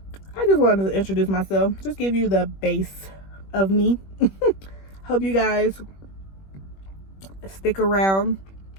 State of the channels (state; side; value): late; right; 21 ms